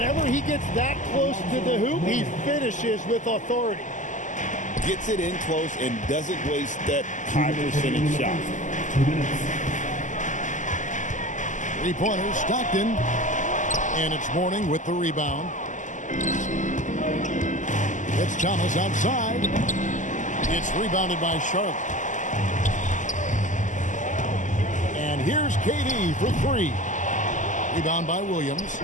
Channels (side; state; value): right; late; 0.37 ms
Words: he gets that close to the hoop, he finishes with authority. Gets it in close and doesn't waste that high percentage shot. 2 minutes. 3-pointer, Stockton. And it's Mourning with the rebound. It's Thomas outside. It's rebounded by Charlotte. And here's KD for 3. Rebound by Williams.